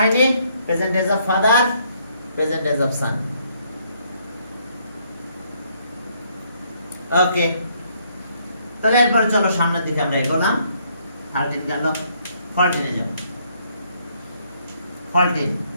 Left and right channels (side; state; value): both; inverted; correlation -0.69